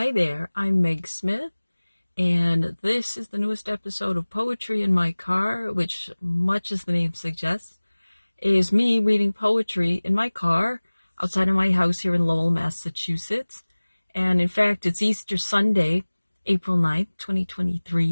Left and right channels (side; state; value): both; inverted; correlation -1.00